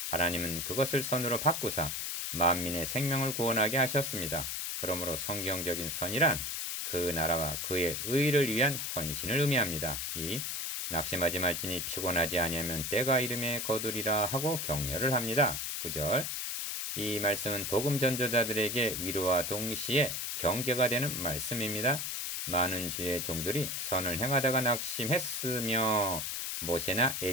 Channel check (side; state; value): left; noise; hiss, 3 dB below the sound